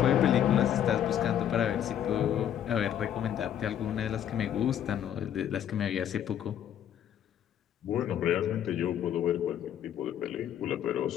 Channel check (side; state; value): right; quieter; 10.1 dB